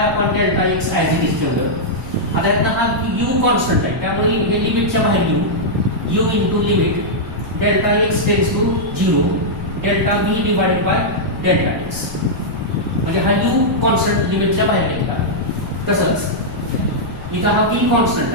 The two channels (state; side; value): noise; left; rumble, 14 dB below the sound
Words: upon delta x as it is ठेवलं. आता यातनं हा u कॉन्स्टंट आहे त्यामुळे हे लिमिटच्या बाहेर घेऊ u into limit delta x tends to 0 delta v divided by delta x म्हणजे हा u कॉन्स्टंट लिमिटच्या बाहेर घेतला. तसंच इथं हा v कॉन्स्टंट